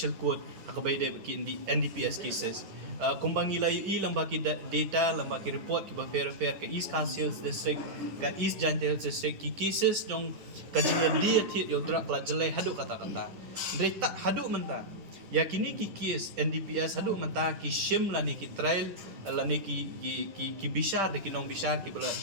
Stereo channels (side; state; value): left; late; 10 ms